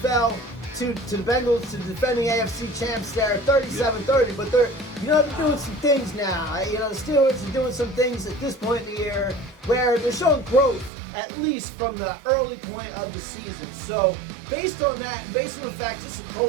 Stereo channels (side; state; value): left; drops out; at 10.9 s